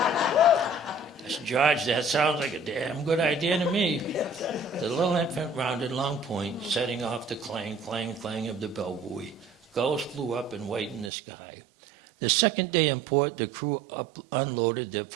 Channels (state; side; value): drops out; left; at 11.1 s